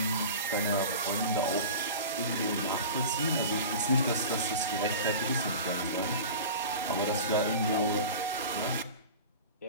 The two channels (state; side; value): inverted; both; correlation -0.34